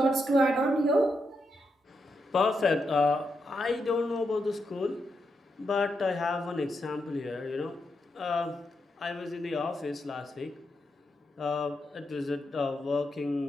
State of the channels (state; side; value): normal; both; correlation 0.83